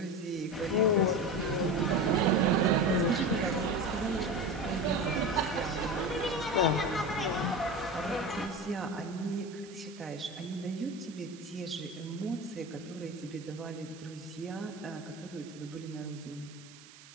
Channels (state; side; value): noise; right; hiss, 20 dB below the sound